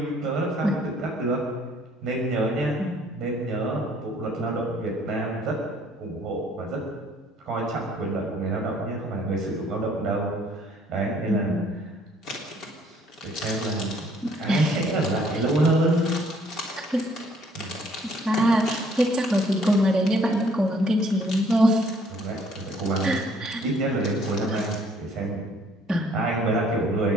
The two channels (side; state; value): both; normal; correlation 0.61